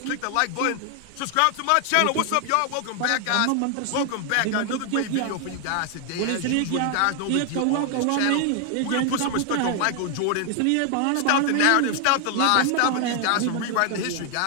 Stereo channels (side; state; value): both; different; correlation 0.00